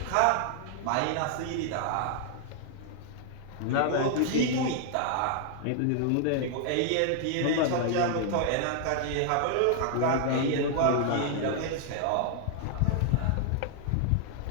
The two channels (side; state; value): both; different; correlation 0.00